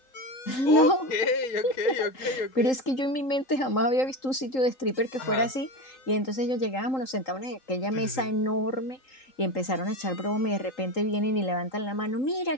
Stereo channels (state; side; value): late; right; 3.8 ms